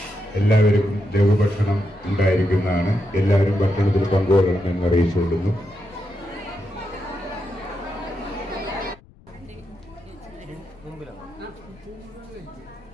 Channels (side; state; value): left; noise; rumble, 26 dB below the sound